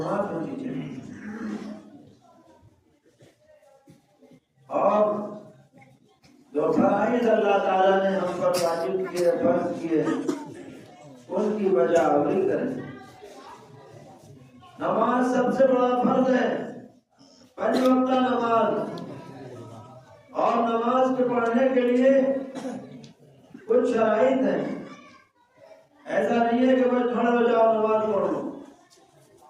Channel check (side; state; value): both; identical; correlation 1.00